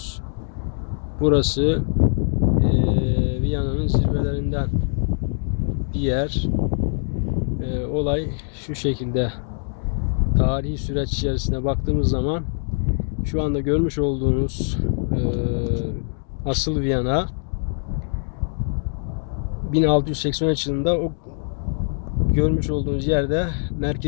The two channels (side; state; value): right; silent; digital silence